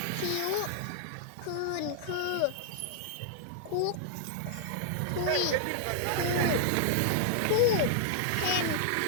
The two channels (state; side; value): different; both; correlation -0.01